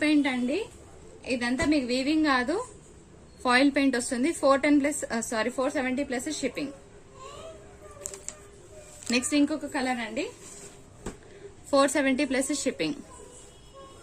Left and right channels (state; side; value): identical; both; correlation 1.00